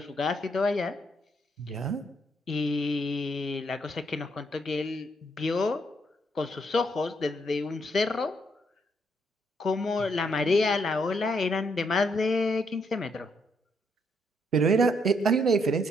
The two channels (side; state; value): both; normal; correlation 0.74